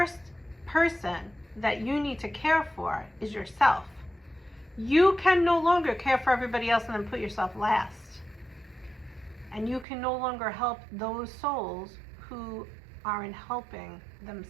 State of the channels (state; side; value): drops out; left; at 9.9 s